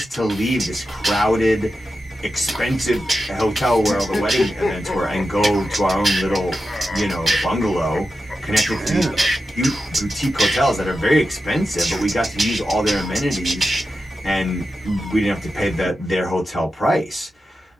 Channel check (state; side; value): normal; both; correlation 0.90